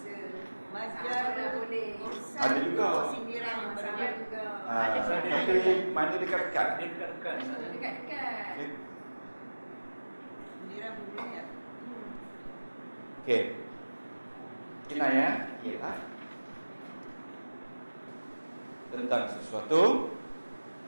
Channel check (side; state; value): both; inverted; correlation -1.00